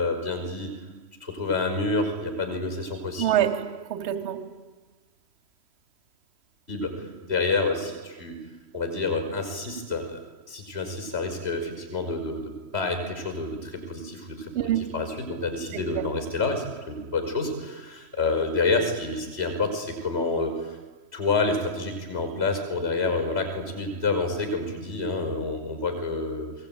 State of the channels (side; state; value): left; late; 3.1 ms